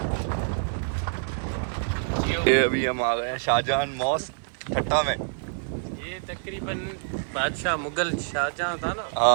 ये अभी हम आ गए हैं शाहजहां मॉस्क ठट्टा में। ये तकरीबन बादशाह मुगल शाहजहां था ना,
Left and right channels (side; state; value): left; silent; 61 dB below the other